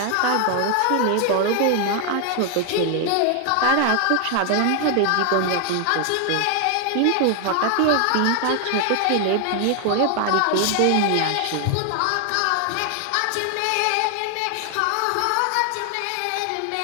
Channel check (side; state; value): both; different; correlation 0.00